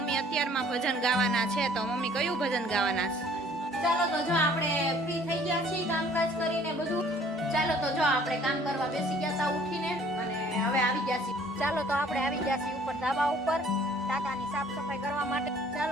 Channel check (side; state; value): both; normal; correlation 0.56